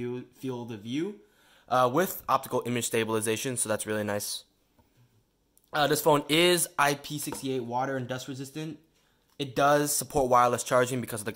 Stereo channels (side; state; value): both; identical; correlation 1.00